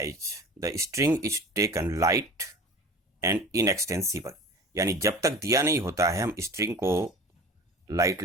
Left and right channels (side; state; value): both; normal; correlation 0.38